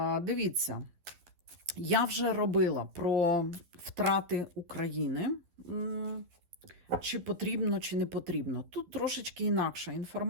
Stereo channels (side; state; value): left; late; 12 ms